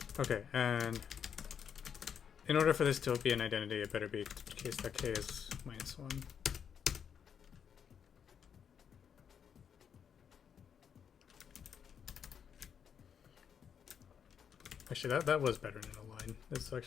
Okay, and in order for this to be an identity, it better be the case that k is minus 1. Actually, that was better than a line. This is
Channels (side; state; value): right; quieter; 7.7 dB